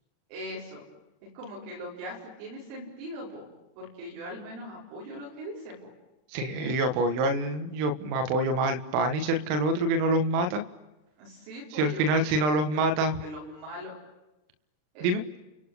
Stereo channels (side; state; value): left; late; 40 ms